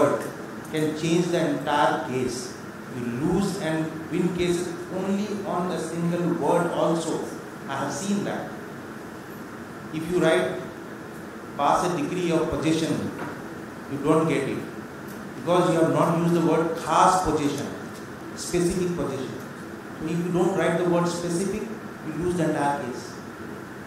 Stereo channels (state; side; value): identical; both; correlation 1.00